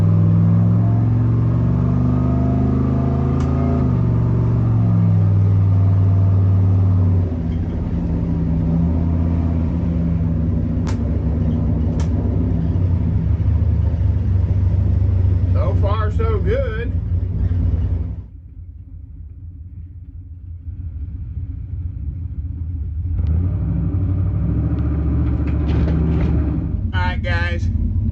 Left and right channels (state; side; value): identical; both; correlation 1.00